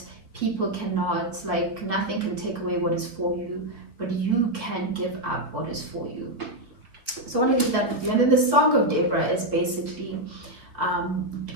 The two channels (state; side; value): late; left; 3.9 ms